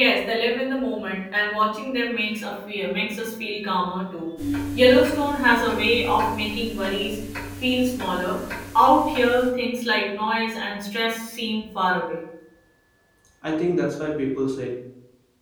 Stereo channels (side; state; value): both; identical; correlation 1.00